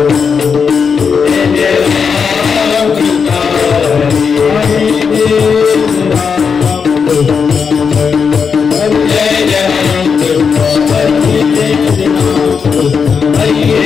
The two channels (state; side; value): quieter; right; 6.0 dB